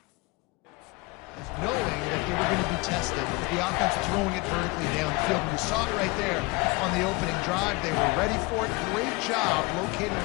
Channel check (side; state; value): right; quieter; 25.3 dB